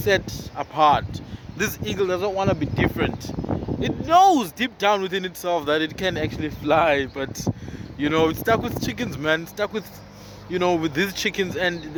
apart, this eagle does not want to be different. It knows deep down within itself that it can actually fly, but it's stuck with chickens, man. It's stuck with with these chickens, and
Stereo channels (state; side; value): identical; both; correlation 1.00